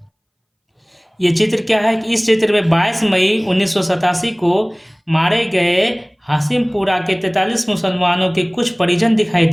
ये चित्र क्या है कि इस चित्र में 22 मई 1987 को मारे गए हाशिमपुरा के 43 मुसलमानों के कुछ परिजन दिखाई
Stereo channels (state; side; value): identical; both; correlation 1.00